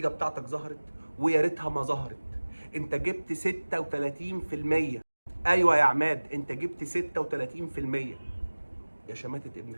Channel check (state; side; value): inverted; both; correlation -1.00